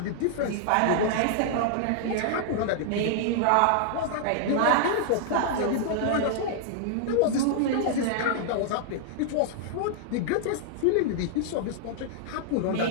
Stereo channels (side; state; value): both; different; correlation -0.01